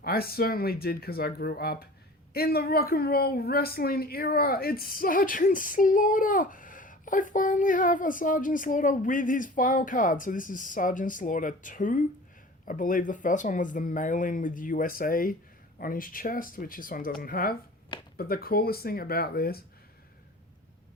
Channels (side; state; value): both; normal; correlation 0.41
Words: I certainly did because I grew up in the rock and roll wrestling era. It's Sergeant Slaughter. I finally have a Sergeant Slaughter with his file card. So this is Sergeant Slaughter 2. I believe the first one was the mailing with USA on his chest, which this one doesn't have. But the coolest thing about this,